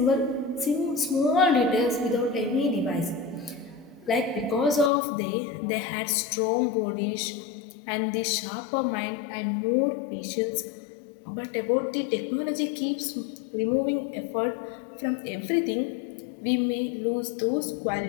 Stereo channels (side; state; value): right; drops out; at 4.9 s